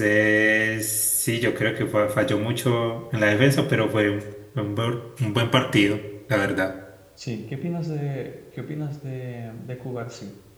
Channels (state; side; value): identical; both; correlation 1.00